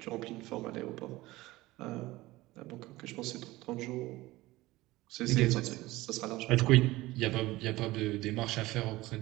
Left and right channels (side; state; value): left; quieter; 18.8 dB